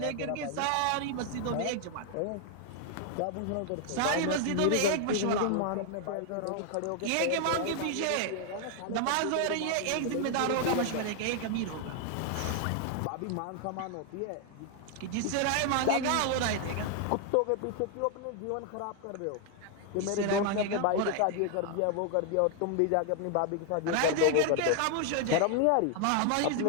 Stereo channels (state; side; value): different; both; correlation 0.00